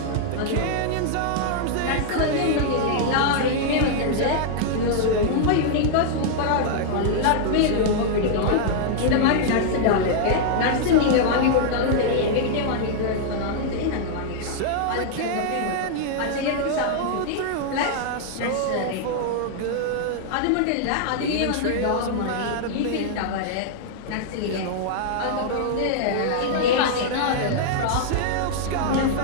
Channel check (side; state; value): both; different; correlation -0.01